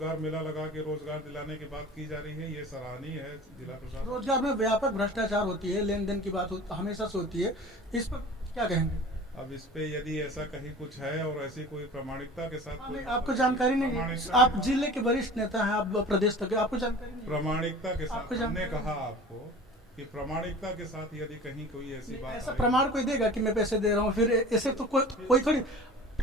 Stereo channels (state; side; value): normal; both; correlation 0.40